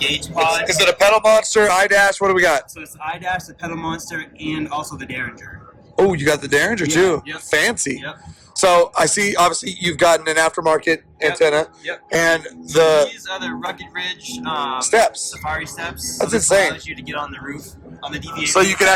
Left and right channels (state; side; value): identical; both; correlation 1.00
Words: pod. Is it a pedal monster, iDash? What do we got? So it's iDash, the pedal monster, and also the Derringer. Oh, you got the Derringer too. Yep. Fancy. Yep. So I see. Obviously, you've gotten an aftermarket antenna. Yep. And these are the Rugged Ridge steps. Safari steps. That's so this insane. allows you to get on the roof on the DVA. So you can